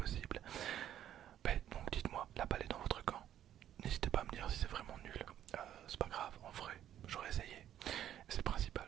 Ben, donc dites-moi, la balle est dans votre camp. N'hésitez pas à me dire si c'est vraiment nul. C'est pas grave, en vrai, j'aurais essayé. C'est le principal,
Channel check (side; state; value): left; quieter; 11.1 dB